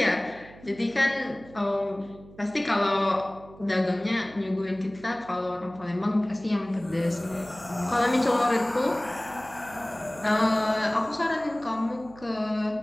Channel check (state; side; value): noise; right; hum, 20 dB below the sound